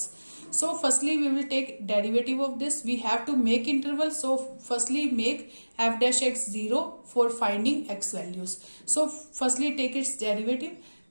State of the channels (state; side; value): inverted; both; correlation -1.00